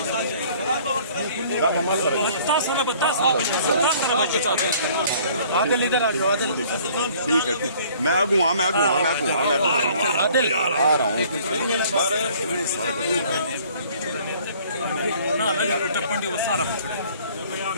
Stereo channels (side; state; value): both; inverted; correlation -0.55